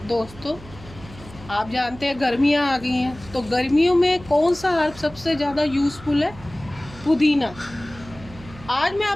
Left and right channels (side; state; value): right; noise; hum, 18 dB below the sound